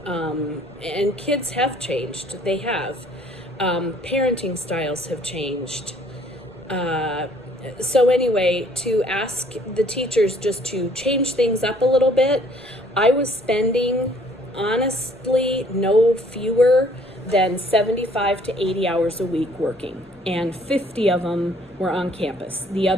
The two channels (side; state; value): left; noise; rumble, 28 dB below the sound